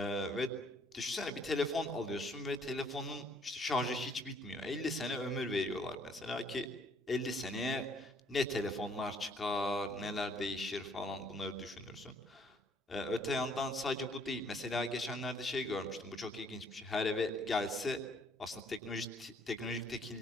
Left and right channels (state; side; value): normal; both; correlation 0.63